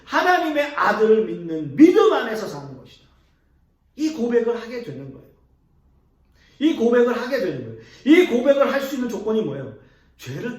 하나님의 아들을 믿는 믿음 안에서 사는 것이다. 이 고백을 하게 되는 거예요. 이 고백을 하게 되는 거예요. 이 고백을 할 수 있는 조건이 뭐예요? 죄를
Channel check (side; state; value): both; identical; correlation 1.00